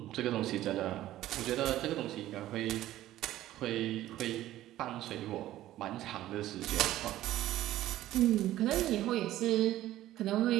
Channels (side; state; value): left; quieter; 14.3 dB